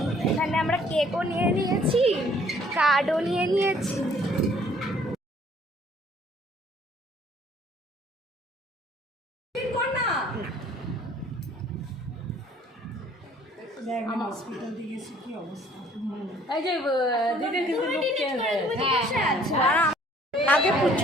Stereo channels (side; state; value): both; normal; correlation 0.58